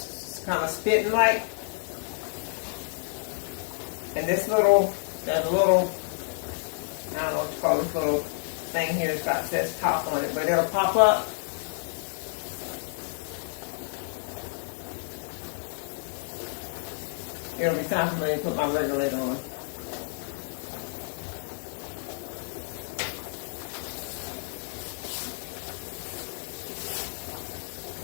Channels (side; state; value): right; silent; 58 dB below the other